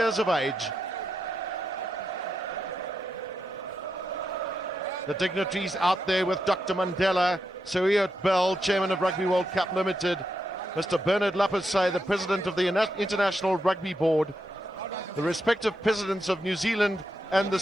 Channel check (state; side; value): normal; both; correlation 0.84